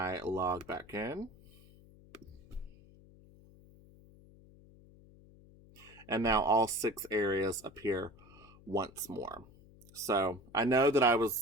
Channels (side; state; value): left; noise; hum, 24 dB below the sound